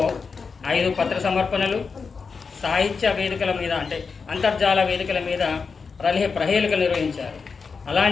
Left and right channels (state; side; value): quieter; right; 5.1 dB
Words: 5 పత్ర సమర్పణలు, సాహిత్య వేదికల మీద అంటే అంతర్జాల వేదికల మీద ప్రహేళికలు నిర్వహించారు.